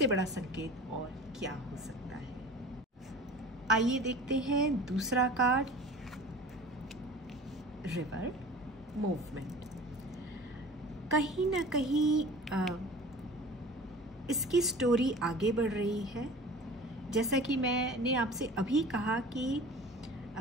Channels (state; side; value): normal; both; correlation 0.40